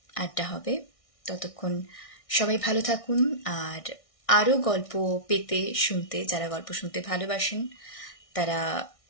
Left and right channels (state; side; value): late; right; 1.6 ms